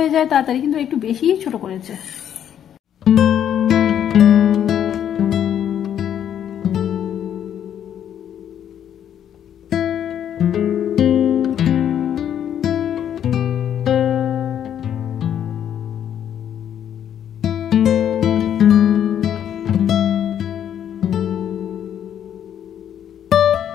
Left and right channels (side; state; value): right; quieter; 9.7 dB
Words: যায় তাড়াতাড়ি, কিন্তু একটু বেশিই ছোট করেছে।